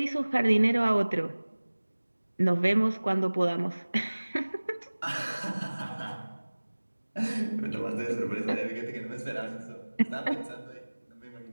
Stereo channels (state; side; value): inverted; both; correlation -1.00